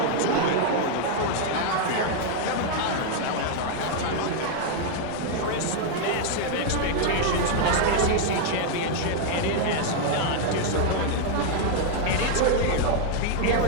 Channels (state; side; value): different; both; correlation 0.00